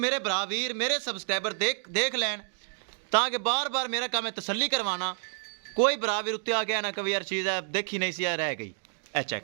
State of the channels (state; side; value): silent; left; digital silence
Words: बरावीर मेरे सबसक्राइबर देख लैन, ताकि बार बार मेरा काम है तसल्ली करवाना। कोई बरावीर उत्ते आ गया ना कभी यार चीज़ है देखी नहीं सी रह गई। ए